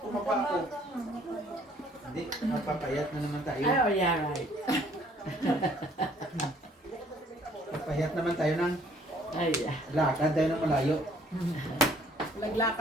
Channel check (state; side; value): normal; both; correlation 0.60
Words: ako. Hindi, napapayat na naman tayo. Ay, oh yeah, right. Payat naman tayo ng Ay, lakad tayo ng malayo.